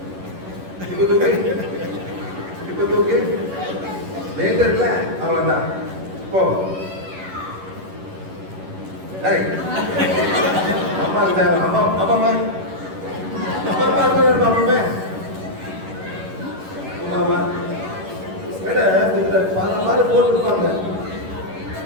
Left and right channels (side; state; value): left; late; 11 ms